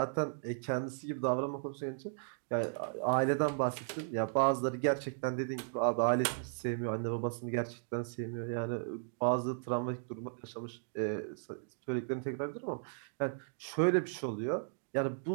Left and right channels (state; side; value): silent; left; digital silence